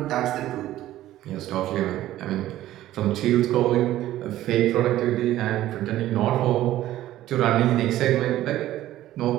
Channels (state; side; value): quieter; left; 14.2 dB